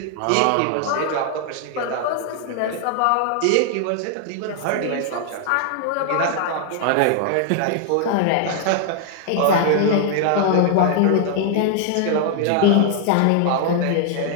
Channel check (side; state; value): both; different; correlation 0.00